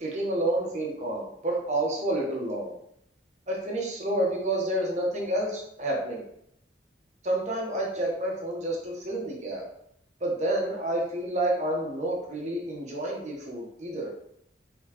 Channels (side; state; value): both; normal; correlation 0.36